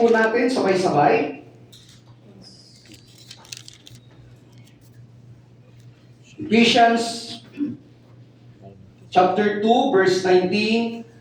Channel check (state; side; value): identical; both; correlation 1.00